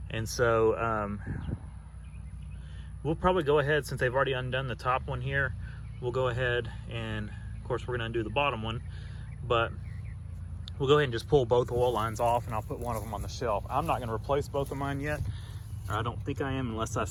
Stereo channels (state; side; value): identical; both; correlation 1.00